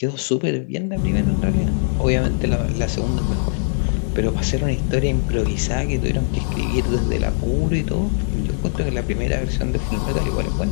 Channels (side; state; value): right; silent; digital silence